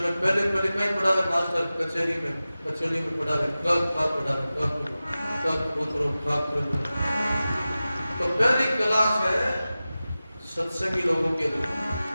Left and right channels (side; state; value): both; inverted; correlation -0.96